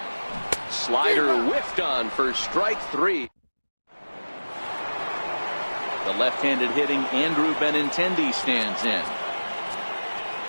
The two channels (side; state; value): both; inverted; correlation -1.00